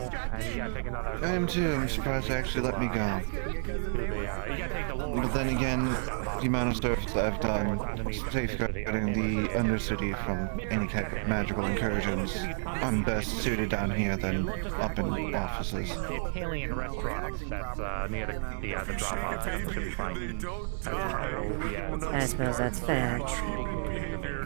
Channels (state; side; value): silent; left; 57 dB below the other